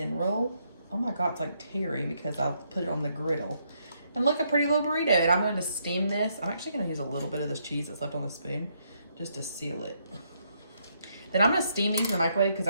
roll. Oh my God, it's like tearing because I'll put it on the griddle. And look, a pretty little burrito. And I'm going to steam this. I'm actually going to use a little bit of this cheese that's left on the spoon just to seal it. Then I'm going to steam these in the microwave because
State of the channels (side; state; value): both; inverted; correlation -0.75